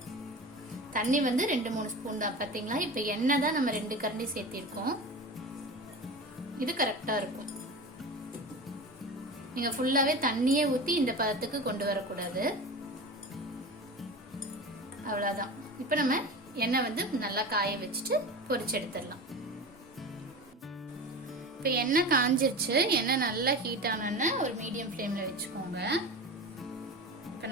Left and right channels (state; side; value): normal; both; correlation 0.30